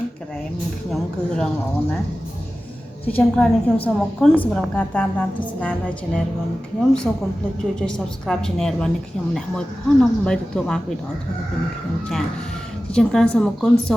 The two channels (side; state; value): both; normal; correlation 0.95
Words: ះក្រែមខ្ញុំគឺរឹងល្អណាស់ជាចុងក្រោយនេះខ្ញុំសូមអរគុណសម្រាប់ការតាមដានទស្សនានៅ Channel របស់ខ្ញុំសូមកុំភ្លេចជួយ Subscribe Channel របស់ខ្ញុំម្នាក់មួយផងដើម្បីទទួលបានវីដេអូថ្មីៗពីខ្ញុំចាជាចុងក្រោយសូមអរគុណសូ